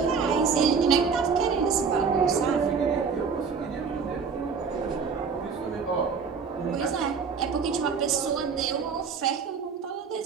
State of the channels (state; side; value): quieter; left; 5.7 dB